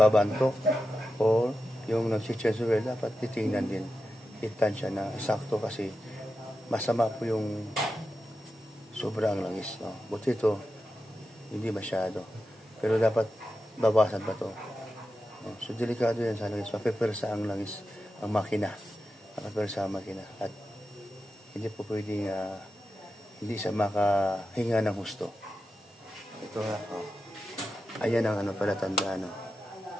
o yung nag-changer, dapat titingnan din. Itan siya na sakto kasi masama po yung sobrang langis, no? Buti ito, hindi masyado. Pero dapat babasan pa to. So, delikado yan sa langis. Mapipersa ang langis, ang makina. Mapipersa ang makina. At hindi po pwedeng hindi siya makahinga ng husto. Ito nga, ayan ang palatandaan,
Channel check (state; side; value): normal; both; correlation 0.90